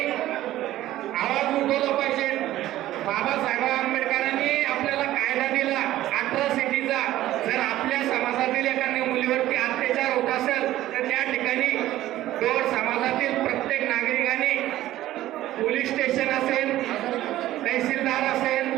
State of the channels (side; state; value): left; quieter; 14.6 dB